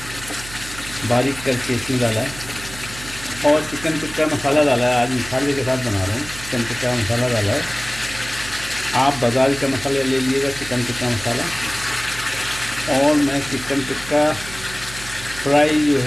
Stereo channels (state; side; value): noise; right; hum, 14 dB below the sound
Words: बारीक करके इसमें डाला है और चिकन टिक्का मसाला डाला है। आज मसाले के साथ बना रहा हूँ। चिकन टिक्का मसाला डाला है। आप बाज़ार का मसाला ले लीजिएगा, चिकन टिक्का मसाला। और मैं चिकन टिक्का फ्राई जो